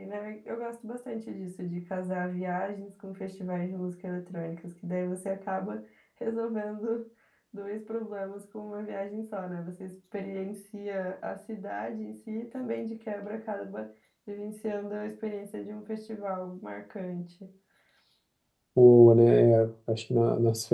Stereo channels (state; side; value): identical; both; correlation 1.00